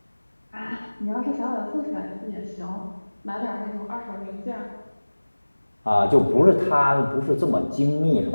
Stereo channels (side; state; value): both; inverted; correlation -1.00